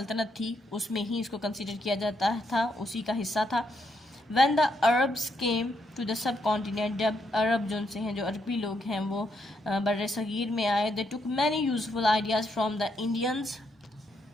تھی، اس میں ہی اس کو کنسیڈر کیا جاتا تھا، اسی کا حصہ تھا۔ When the Arabs came to the subcontinent، جب عرب جو سے ہیں، جو عربی لوگ ہیں، وہ بر صغیر میں آئے، they took many useful ideas from the Indians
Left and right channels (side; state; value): both; normal; correlation 0.78